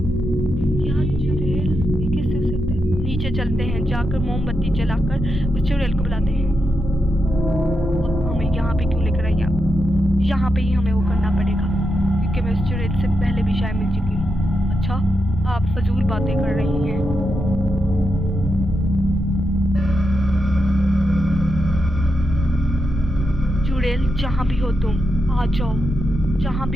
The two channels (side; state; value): both; normal; correlation 0.85